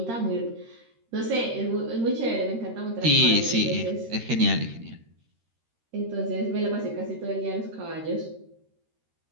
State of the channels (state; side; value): late; left; 13 ms